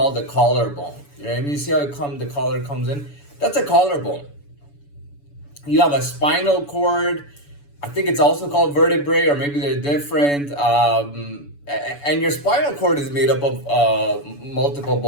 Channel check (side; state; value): right; late; 7.0 ms